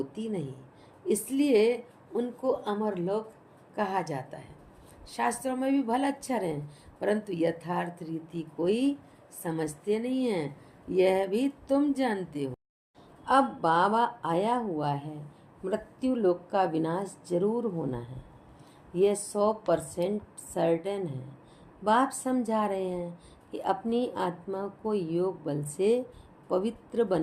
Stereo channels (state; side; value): identical; both; correlation 1.00